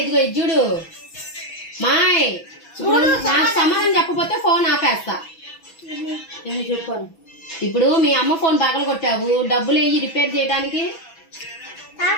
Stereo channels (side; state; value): right; late; 6.1 ms